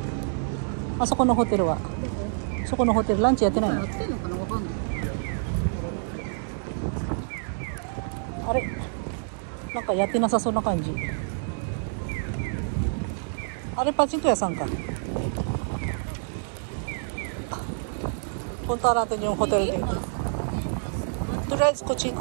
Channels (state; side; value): silent; left; digital silence